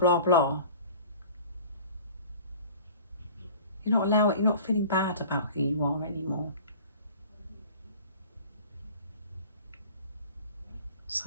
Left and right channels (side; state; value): both; inverted; correlation -0.43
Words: blah. You're not feeling bad about who you are anymore.